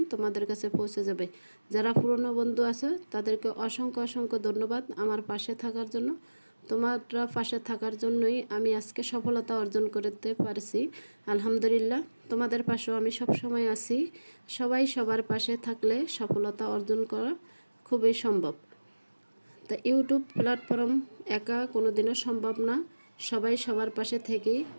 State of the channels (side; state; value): both; inverted; correlation -1.00